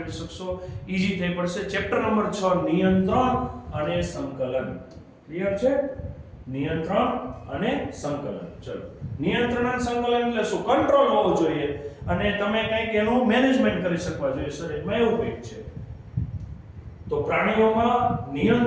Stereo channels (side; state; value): both; identical; correlation 1.00